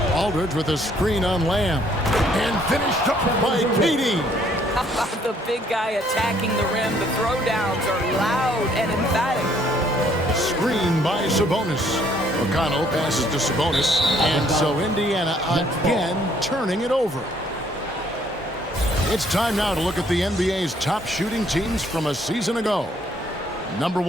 Aldridge with a screen on Lamb. And finished up by KD. How about the big guy attacking the rim? The throwdowns are loud and emphatic. Screen by Sabonis. McConnell passes to Sabonis. And so Indiana again turning it over. It's time now to look at the NBA's top shooting teams from a season ago. Number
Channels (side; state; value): both; normal; correlation 0.65